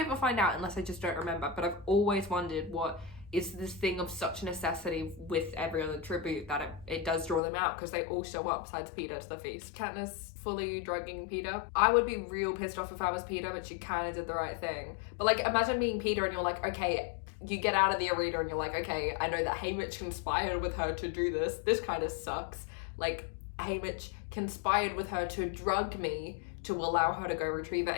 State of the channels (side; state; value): right; drops out; at 7.4 s